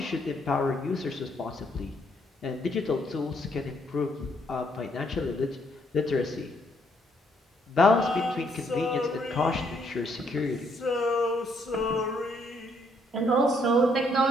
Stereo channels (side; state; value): both; normal; correlation 0.70